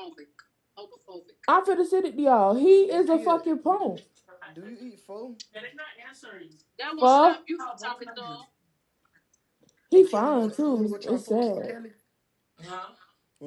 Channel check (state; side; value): identical; both; correlation 1.00